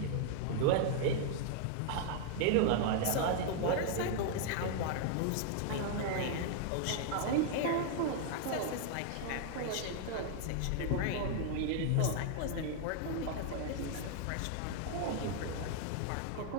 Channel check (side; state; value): both; different; correlation 0.00